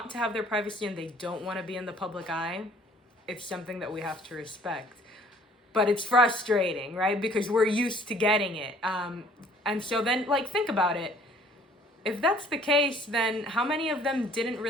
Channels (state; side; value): normal; both; correlation 0.57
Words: to have their privacy and they don't want to be in the public eye, it's something that we have to respect. But it's frustrating, right? Because we're used to getting it. And so then, like, think about it. If that's the case, then how many of them didn't